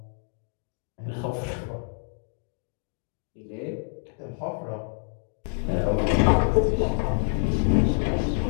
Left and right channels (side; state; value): right; silent; digital silence